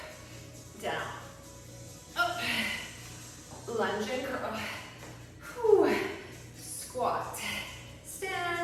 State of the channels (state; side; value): identical; both; correlation 1.00